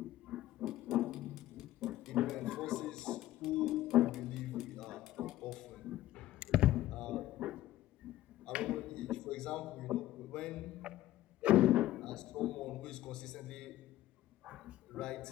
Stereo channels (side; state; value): right; quieter; 14.8 dB